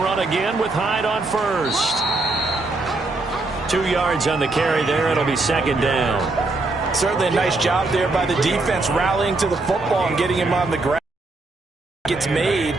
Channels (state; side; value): quieter; left; 3.2 dB